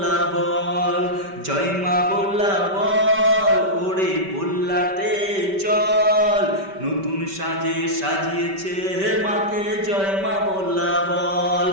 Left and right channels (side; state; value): left; late; 5.2 ms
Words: বল। জয় মা বল্লা বল ওরে বল্লাতে চল, নতুন সাজে সাজিয়েছে হে মাকে জয় মা বল্লা বল।